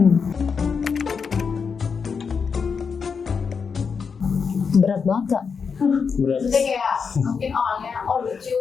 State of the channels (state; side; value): quieter; right; 5.8 dB